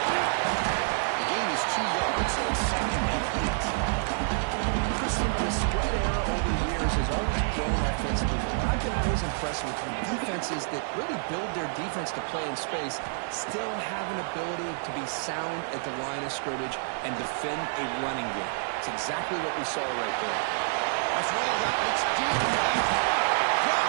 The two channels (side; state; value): left; silent; digital silence